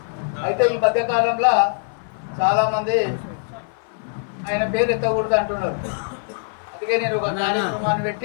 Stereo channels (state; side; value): silent; right; 56 dB below the other